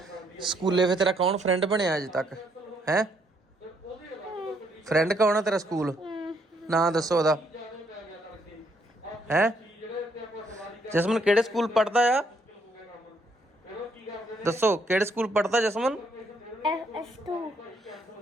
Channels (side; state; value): both; normal; correlation 0.72